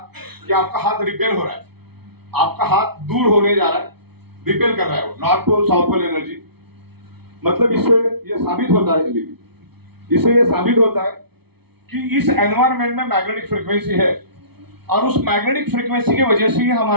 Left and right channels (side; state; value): left; late; 0.98 ms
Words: कि आपका हाथ रिपेल हो रहा है, आपका हाथ दूर होने जा रहा है, रिपेल कर रहा है वो, north pole south pole energy. मतलब इससे ये साबित होता है, इससे ये साबित होता है कि इस एनवायरनमेंट में मैग्नेटिक फ्रीक्वेंसी है और उस मैग्नेटिक फ्रीक्वेंसी की वजह से ही